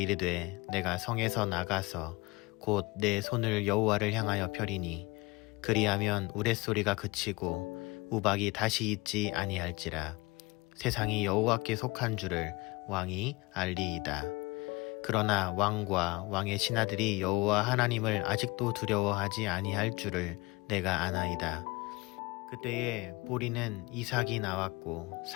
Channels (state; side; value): quieter; right; 24.0 dB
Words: 내가 성에서 나가서 곧 내 손을 여호와를 향하여 펴리니 그리하면 우레소리가 그치고 우박이 다시 있지 아니할지라. 세상이 여호와께 속한 줄을 왕이 알리이다. 그러나 왕과 왕의 신하들이 여호와 하나님을 아직도 두려워하지 아니할 줄을 내가 아나이다. 그때에 보리는 이삭이 나왔고